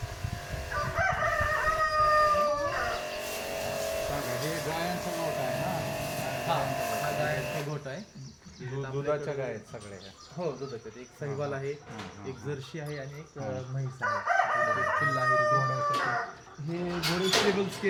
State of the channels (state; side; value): identical; both; correlation 1.00